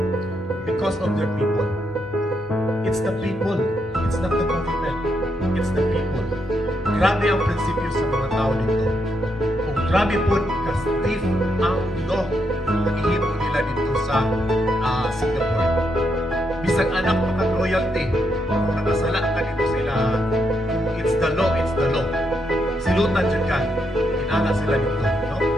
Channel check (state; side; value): normal; both; correlation 0.79